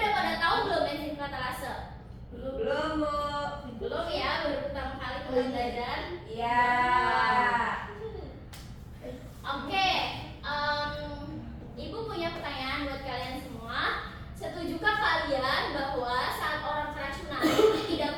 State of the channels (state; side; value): identical; both; correlation 1.00